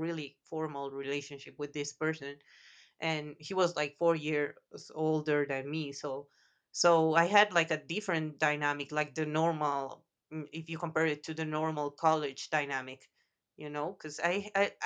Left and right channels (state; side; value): identical; both; correlation 1.00